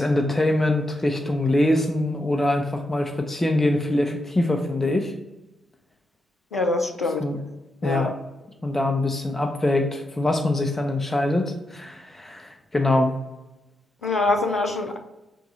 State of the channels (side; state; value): both; normal; correlation 0.84